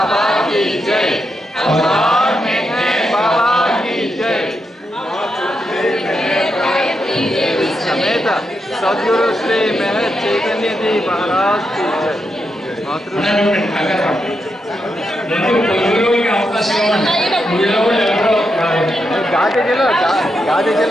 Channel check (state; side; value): normal; both; correlation 0.84